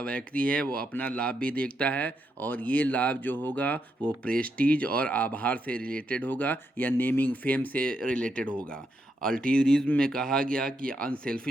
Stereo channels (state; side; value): normal; both; correlation 0.81